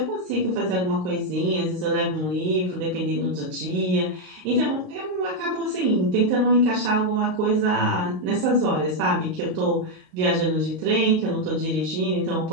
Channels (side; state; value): left; late; 33 ms